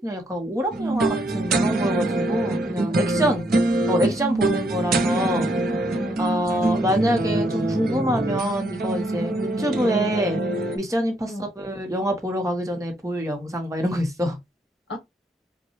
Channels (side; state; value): both; normal; correlation 0.73